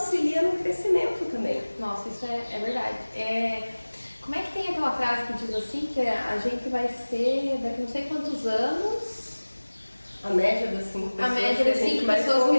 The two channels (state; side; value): inverted; both; correlation -1.00